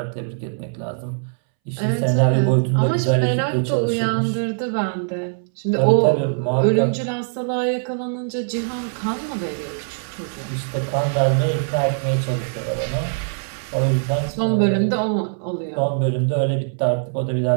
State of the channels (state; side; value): silent; left; 64 dB below the other